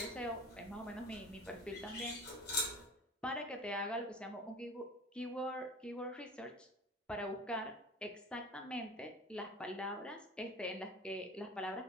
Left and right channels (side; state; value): both; normal; correlation 0.37